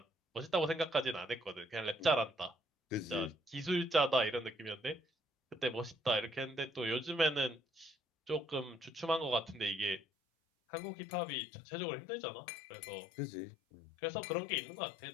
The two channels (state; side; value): drops out; right; at 10.0 s